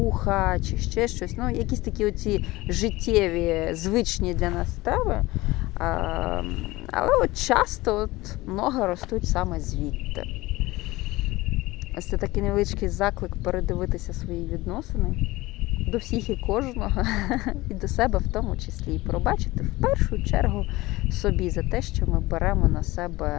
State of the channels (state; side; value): quieter; right; 19.7 dB